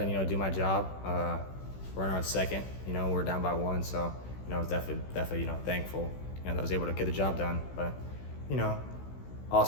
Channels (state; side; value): late; right; 16 ms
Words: do my job. Runner on second, we're down by 1, so, I was definitely, thankful, that I was able to get the job done. But,